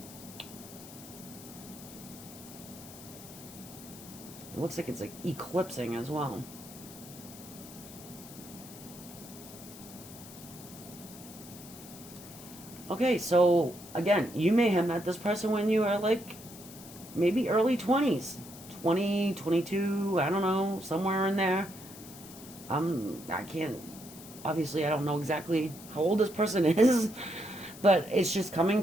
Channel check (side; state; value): left; noise; hiss, 16 dB below the sound